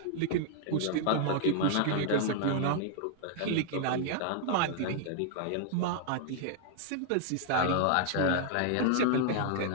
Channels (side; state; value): both; different; correlation 0.00